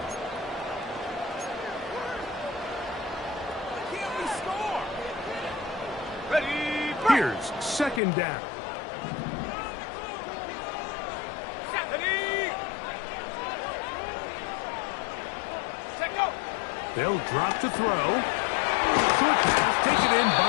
Can't we score? Ready. Here's 2nd down. They'll drop to throw. Short pass taken in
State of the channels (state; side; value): drops out; right; at 8.0 s